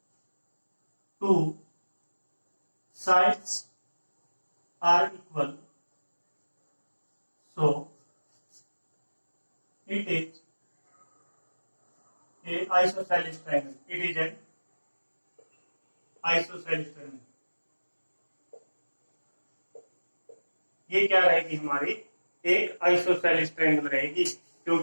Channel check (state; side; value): inverted; both; correlation -1.00